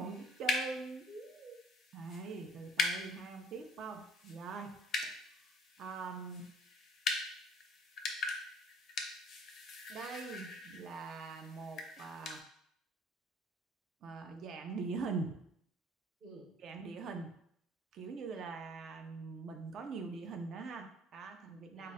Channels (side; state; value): both; normal; correlation 0.54